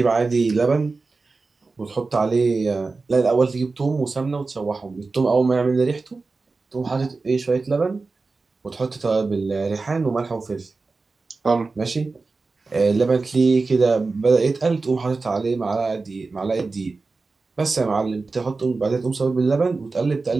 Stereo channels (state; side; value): quieter; left; 3.9 dB